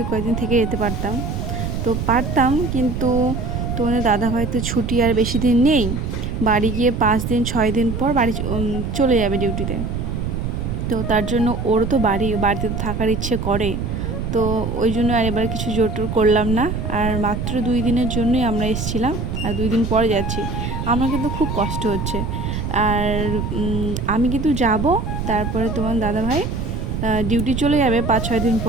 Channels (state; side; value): noise; right; rumble, 3 dB below the sound